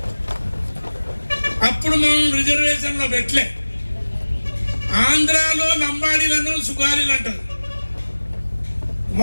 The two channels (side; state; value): both; inverted; correlation -1.00